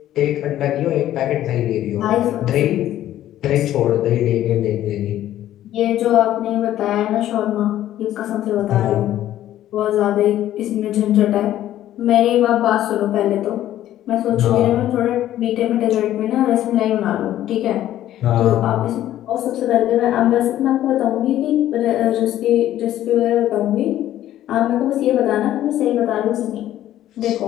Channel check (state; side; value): quieter; right; 12.8 dB